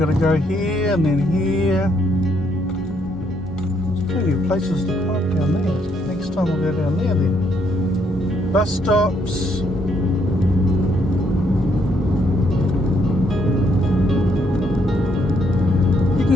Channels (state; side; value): normal; both; correlation 0.72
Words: to go here and then here. There's plenty of places to park down there. Next time we'll go down there then. Bus stops. You